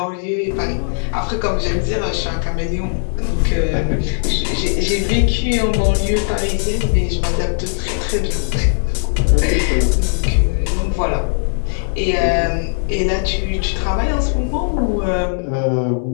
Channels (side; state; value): right; silent; 59 dB below the other